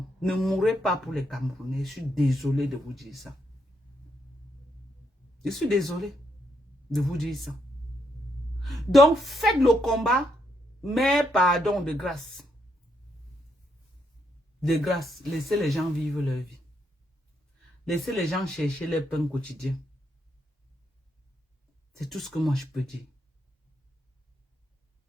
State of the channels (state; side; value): normal; both; correlation 0.78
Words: Ne mourrez pas pour les Camerounais. Je suis désolé de vous dire ça. Je suis désolé de vous dire ça. Donc, faites le combat, mais pardon, de grâce. De grâce, laissez les gens vivre leur vie. Laissez les gens chercher leur pain quotidien. C'est tout ce que moi je peux dire.